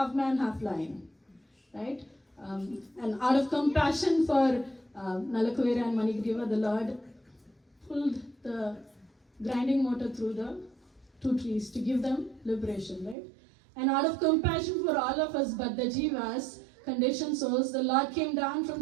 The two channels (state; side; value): drops out; left; at 13.2 s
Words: man, half lion, right? And out of compassion for Nalakuvera and Manigriva, the Lord pulled the grinding motor through the 2 trees to give them liberation, right? And out of compassion for all of us, but the jivas, conditioned souls, the Lord came down from